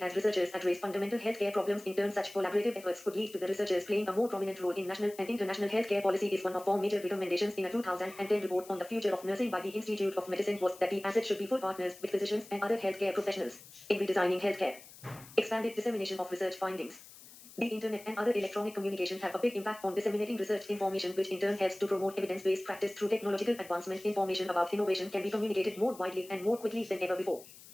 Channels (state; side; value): noise; left; hiss, 19 dB below the sound